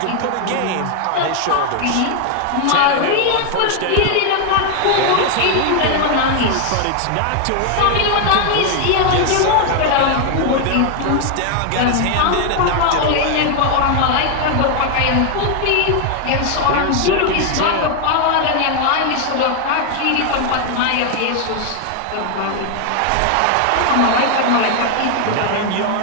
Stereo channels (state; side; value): different; both; correlation 0.01